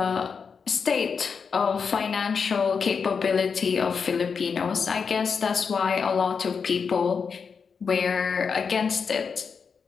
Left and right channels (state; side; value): quieter; right; 5.8 dB